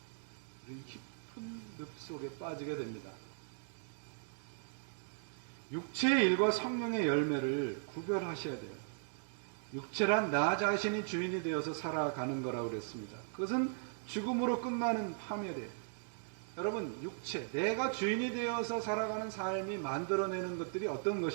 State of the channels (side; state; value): left; silent; digital silence